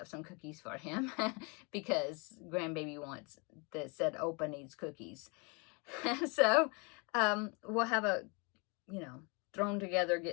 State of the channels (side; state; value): right; quieter; 31.5 dB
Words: some cookies for him because grandbaby said Opa needs cookies. So we'll have a,